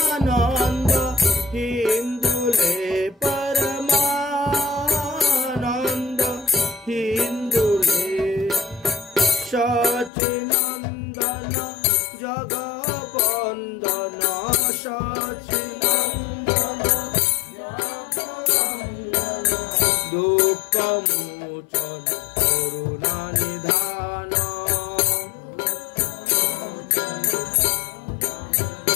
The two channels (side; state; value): right; drops out; at 10.1 s